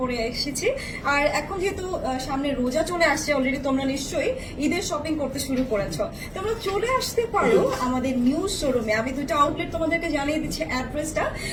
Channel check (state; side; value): identical; both; correlation 1.00